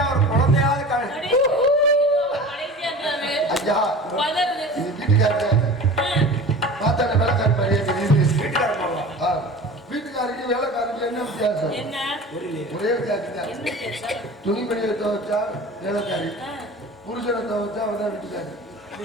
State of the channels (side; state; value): both; normal; correlation 0.37